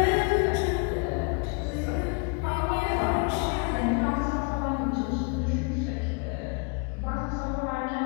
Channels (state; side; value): quieter; right; 35.0 dB